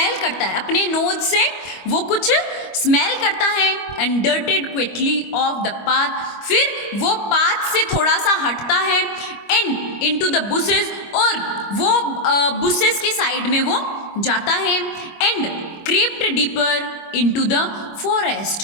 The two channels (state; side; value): late; right; 25 ms